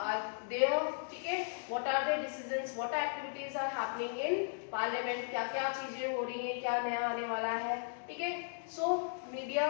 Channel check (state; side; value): silent; right; digital silence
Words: there, ठीक है, what are the decisions, what activities are happening in parliament, क्या क्या चीजें हो रही हैं, क्या नया आने वाला है, ठीक है। So media